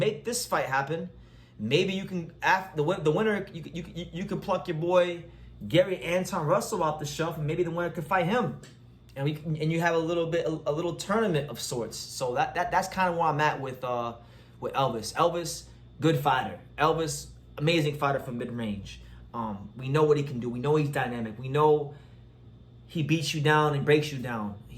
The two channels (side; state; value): both; identical; correlation 1.00